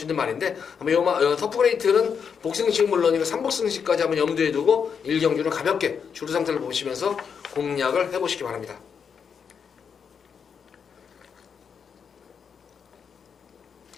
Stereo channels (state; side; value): quieter; right; 6.7 dB